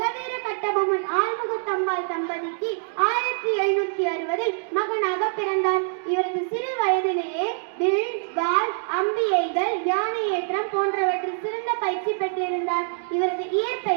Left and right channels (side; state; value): left; silent; digital silence